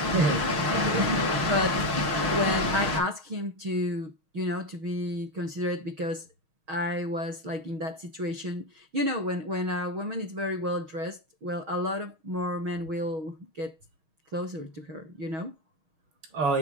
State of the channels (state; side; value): late; left; 6.4 ms